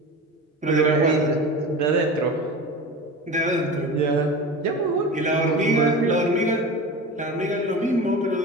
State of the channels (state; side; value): normal; both; correlation 0.31